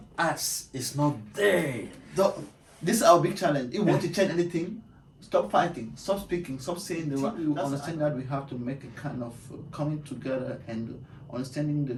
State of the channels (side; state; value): both; identical; correlation 1.00